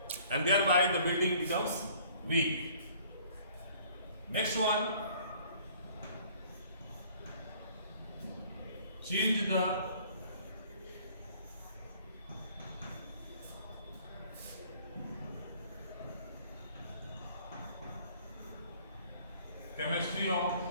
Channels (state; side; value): inverted; both; correlation -0.55